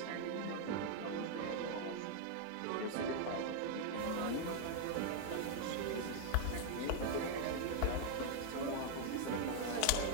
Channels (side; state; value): both; different; correlation 0.00